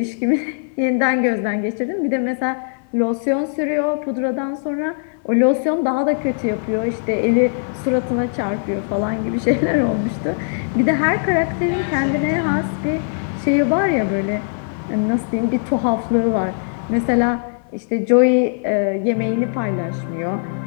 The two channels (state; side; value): silent; right; 57 dB below the other